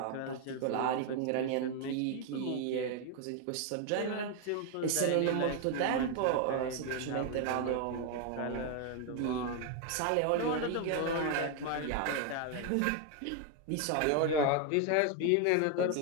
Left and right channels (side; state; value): both; different; correlation 0.01